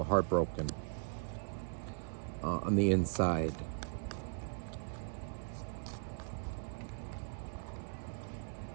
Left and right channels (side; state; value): left; silent; digital silence